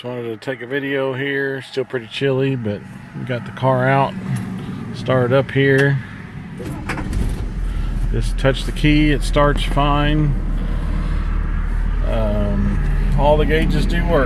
wanted to take a video here. Still pretty chilly, but we got the car out. Started up here. Just touch the key, it starts fine. All the gauges do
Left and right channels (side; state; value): both; identical; correlation 1.00